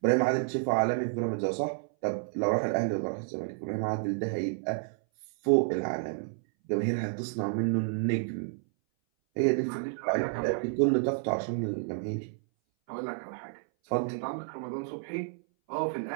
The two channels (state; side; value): silent; left; 58 dB below the other